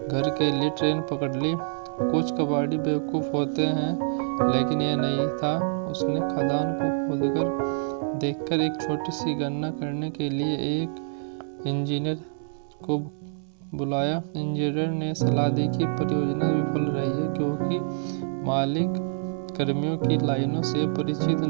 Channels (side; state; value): left; silent; 61 dB below the other